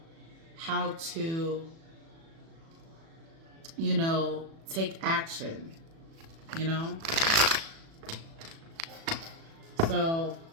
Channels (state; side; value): late; left; 36 ms